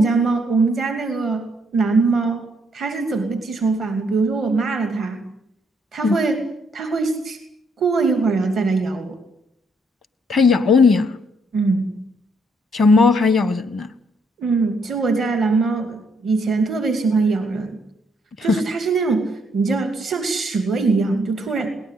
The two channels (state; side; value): normal; both; correlation 0.71